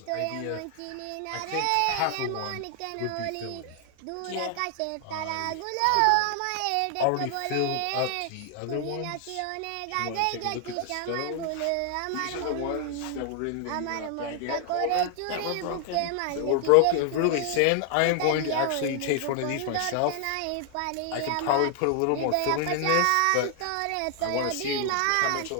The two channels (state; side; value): different; both; correlation 0.00